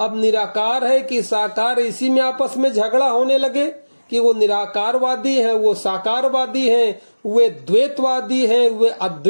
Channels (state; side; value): inverted; both; correlation -1.00